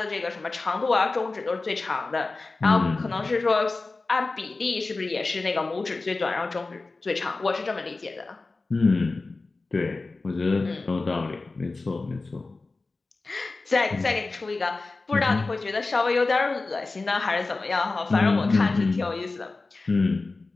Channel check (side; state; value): right; quieter; 3.6 dB